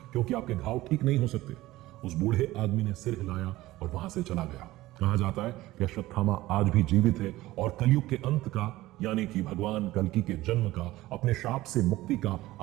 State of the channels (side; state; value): left; quieter; 17.3 dB